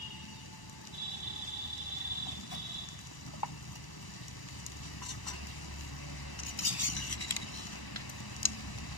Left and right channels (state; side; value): late; right; 1.0 ms